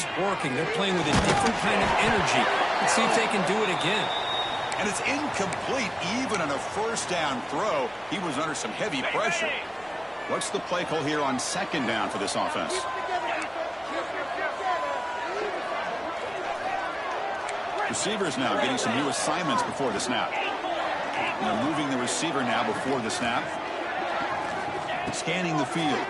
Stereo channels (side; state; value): both; identical; correlation 1.00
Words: working. They're playing with a different kind of energy. Let's see if they can do it again. And it's incomplete even on a first down throw. He was under some heavy pressure. What's the play call here on second down for this offense? Receivers now getting some new assignments before the snap. They're moving the receiver now before the snap. Scanning the field.